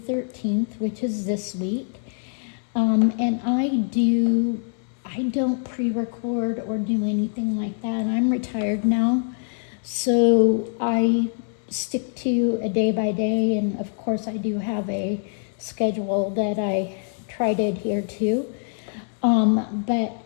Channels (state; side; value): silent; right; 63 dB below the other